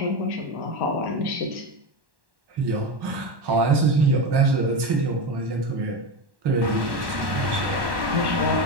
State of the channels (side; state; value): left; late; 1.1 ms